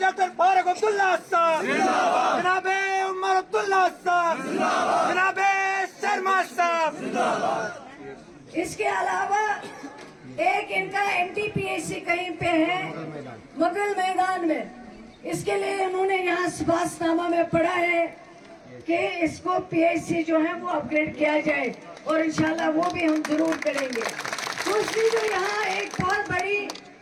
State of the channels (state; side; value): identical; both; correlation 1.00